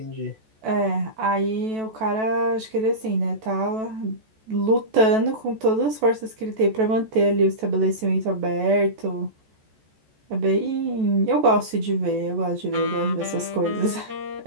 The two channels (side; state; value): left; late; 14 ms